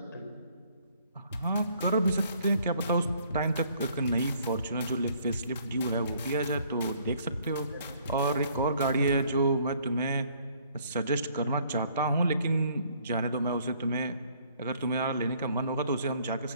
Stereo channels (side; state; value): both; inverted; correlation -0.62